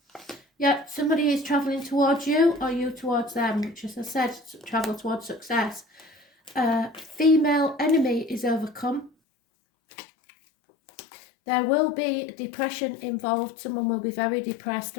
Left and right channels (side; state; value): right; drops out; at 9.1 s